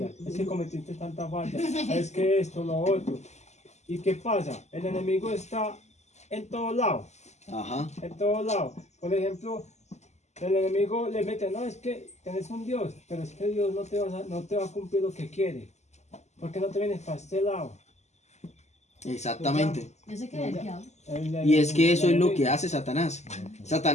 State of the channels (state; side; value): late; right; 0.33 ms